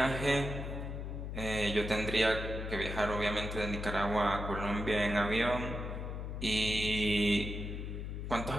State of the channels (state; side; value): noise; left; hum, 5 dB below the sound